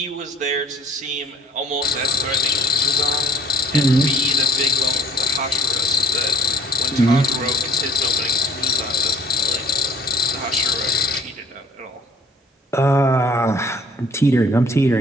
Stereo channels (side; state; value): both; normal; correlation 0.55